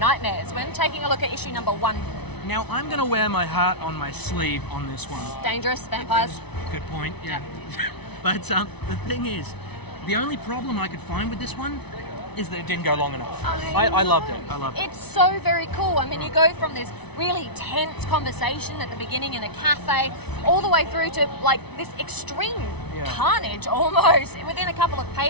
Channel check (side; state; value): right; late; 0.99 ms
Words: We're taking a look at issue number 1. Now, I'm going to wear my heart on my sleeve on this one. Dangerous vampires. Good point, yeah. But the thing is, the only problem I could find with this one is that it didn't go long enough. I loved it. It's so very cool. I mean, you go from this really tense conversation at the beginning in a cafe all the way through to like this extreme carnage almost within a couple of